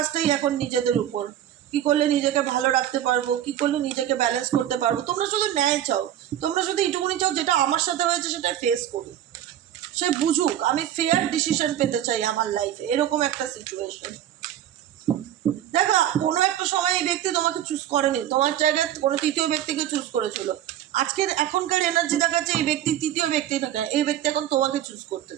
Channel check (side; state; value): left; quieter; 11.5 dB